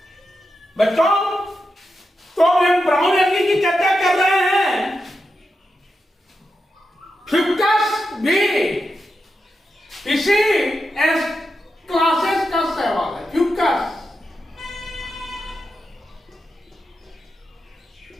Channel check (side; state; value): both; normal; correlation 0.88